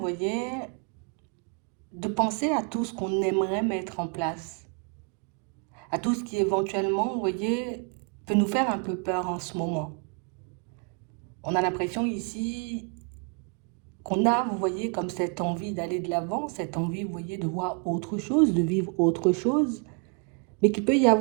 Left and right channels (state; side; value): quieter; left; 37.6 dB